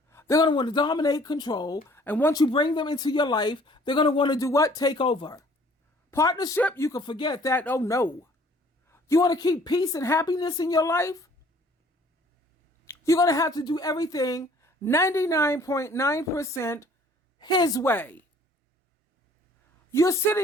They're going to want to dominate, control, and once you bring them into your life, they're going to want to do what? Take over. Partnership, you can forget that. Oh no. You want to keep peace and happiness in your life? You're going to have to do everything 99.9% his way. You're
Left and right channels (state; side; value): normal; both; correlation 0.56